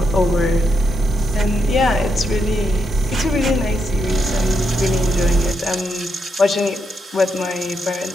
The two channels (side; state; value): both; normal; correlation 0.80